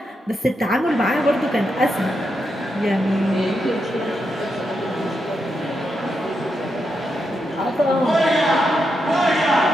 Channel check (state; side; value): normal; both; correlation 0.84